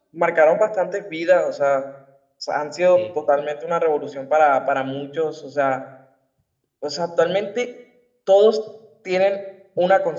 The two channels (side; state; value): both; identical; correlation 1.00